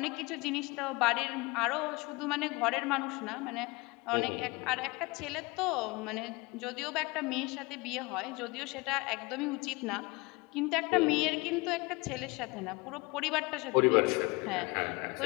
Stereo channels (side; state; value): right; quieter; 24.9 dB